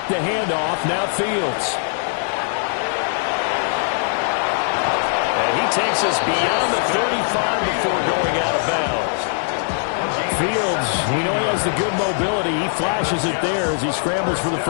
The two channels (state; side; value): silent; right; digital silence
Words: the handoff. Now Fields. And he takes us beyond the 35 before going out of bounds. Fields, we know he has the good mobility. He flashes it there as he scrambles for the